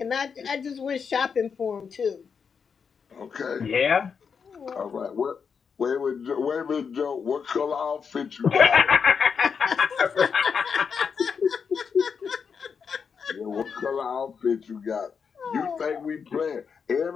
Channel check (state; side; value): quieter; right; 6.2 dB